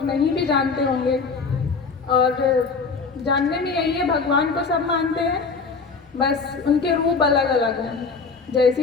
नहीं भी जानते होंगे। और जानने में यही है, भगवान को सब मानते हैं, बस उनके रूप अलग अलग हैं।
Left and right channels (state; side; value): quieter; right; 4.7 dB